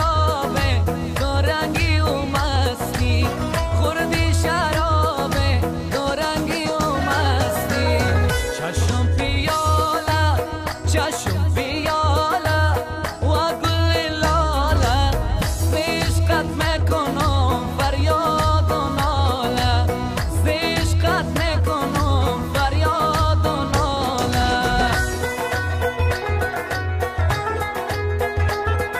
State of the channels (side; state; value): both; identical; correlation 1.00